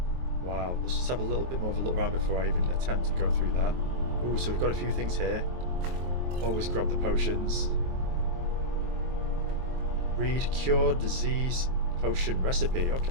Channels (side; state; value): left; late; 23 ms